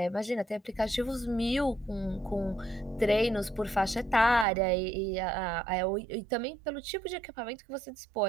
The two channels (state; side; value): drops out; left; at 4.5 s